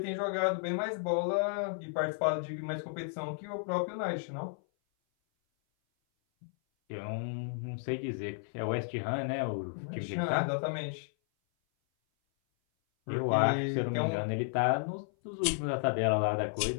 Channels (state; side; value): silent; right; 56 dB below the other